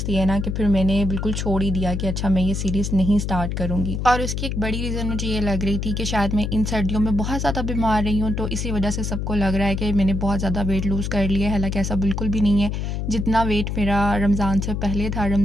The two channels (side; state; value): left; noise; hum, 2 dB below the sound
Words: दिए ना कि फिर मैंने बिल्कुल छोड़ ही दिया कि अच्छा मैं ये सीरीज़ नहीं स्टार्ट करूँगी। और उसकी एक बड़ी रीज़न मुझे ये लग रही थी कि शायद मैं इन सर्दियों में बहुत ज़्यादा बीमार रही हूँ, तो इसी वजह से सबको लग रहा है कि मैंने बहुत ज़्यादा वेट लूज़ कर लिया है। हालांकि ऐसा बिल्कुल भी नहीं है, जितना वेट मेरा रमज़ान से पहले था